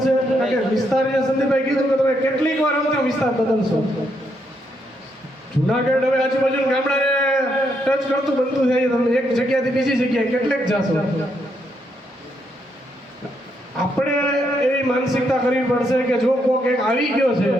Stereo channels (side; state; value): both; normal; correlation 0.77